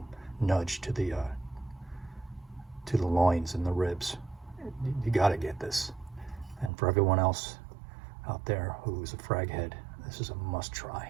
nudge to the loins and the ribs. You got to get this. And for everyone else out there who's a frag head, this is a must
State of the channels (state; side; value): drops out; left; at 6.7 s